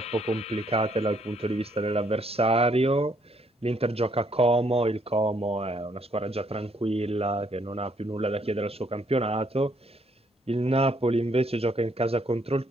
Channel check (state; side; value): normal; both; correlation 0.69